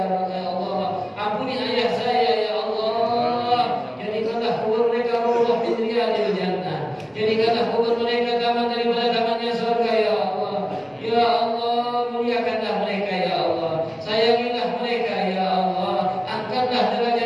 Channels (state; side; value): identical; both; correlation 1.00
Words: Allah, ampuni ayah saya ya Allah. Jadikanlah kubur mereka rawdah min riyadil jannah, jadikanlah kubur mereka taman daripada tamannya surga ya Allah. Ya Allah, muliakanlah mereka ya Allah, sayangilah mereka ya Allah, angkatlah